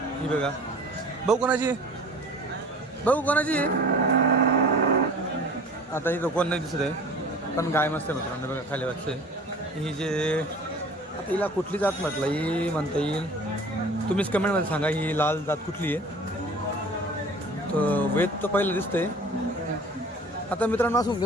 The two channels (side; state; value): both; normal; correlation 0.44